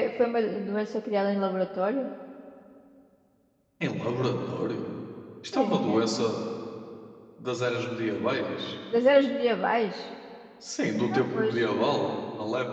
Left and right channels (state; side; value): identical; both; correlation 1.00